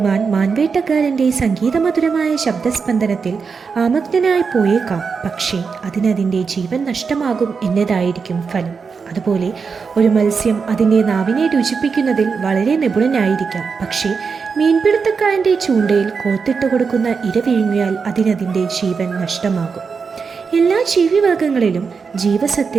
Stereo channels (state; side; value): quieter; left; 5.4 dB